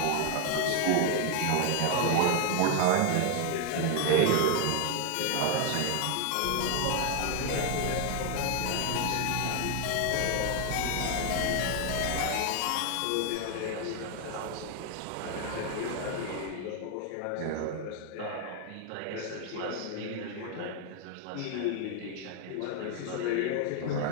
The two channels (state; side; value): different; both; correlation 0.01